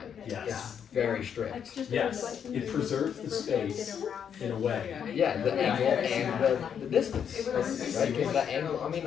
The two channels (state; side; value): quieter; right; 8.0 dB